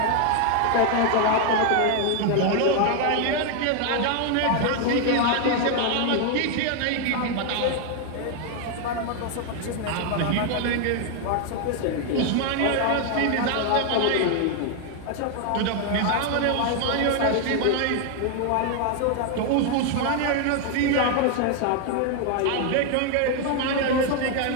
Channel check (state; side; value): different; both; correlation 0.00